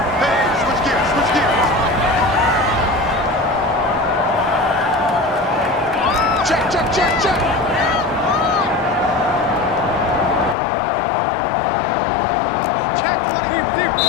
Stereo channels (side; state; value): right; drops out; at 10.6 s